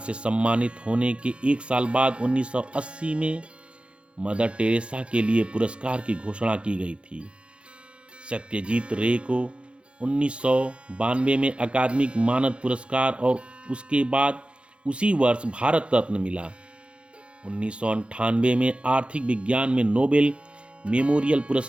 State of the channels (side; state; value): left; late; 0.058 ms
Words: सम्मानित होने के एक साल बाद 1980 में मदर टेरेसा के लिए पुरस्कार की घोषणा की गई थी। सत्यजीत रे को 1992 में अकादमिक मानद पुरस्कार और उसके बाद उसी वर्ष भारत रत्न मिला। 1998 में आर्थिक विज्ञान में नोबेल मेमोरियल